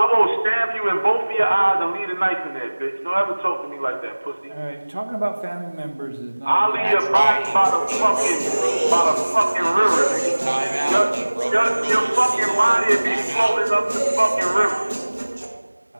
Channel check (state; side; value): inverted; both; correlation -1.00